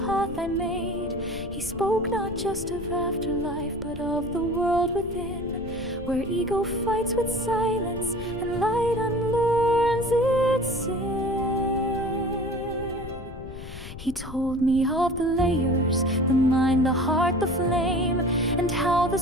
path I made. He spoke not just of afterlife, but of the world within, where ego fights with silence and light unlearns its sin. He told me of the layers, the mind, the heart, the flame, and how the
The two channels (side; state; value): left; noise; rumble, 12 dB below the sound